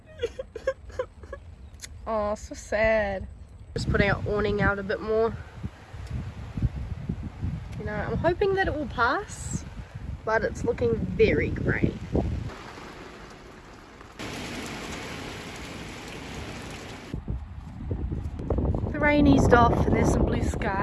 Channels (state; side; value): identical; both; correlation 1.00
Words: Oh, so sad. Just putting our awning out a bit more. You know, I'm hoping that it will pass, but it's looking very grey. The rain eased off and there's some blue